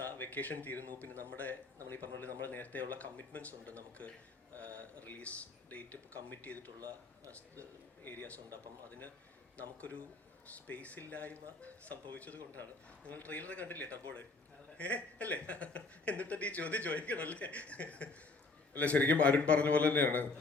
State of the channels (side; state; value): right; quieter; 3.7 dB